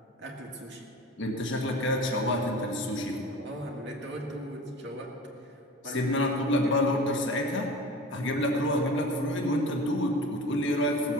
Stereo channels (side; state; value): both; normal; correlation 0.38